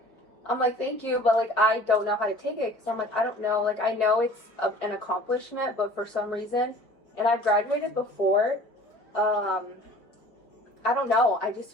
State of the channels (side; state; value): right; late; 4.5 ms